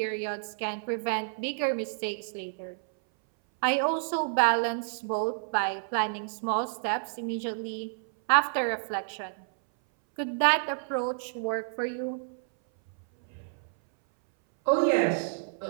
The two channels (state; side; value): silent; left; 58 dB below the other